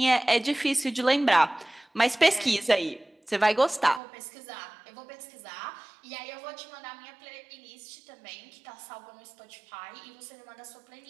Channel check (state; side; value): drops out; left; at 4.0 s